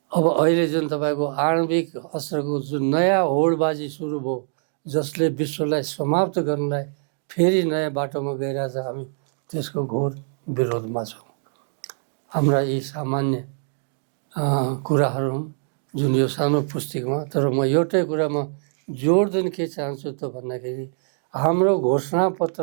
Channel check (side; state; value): left; silent; digital silence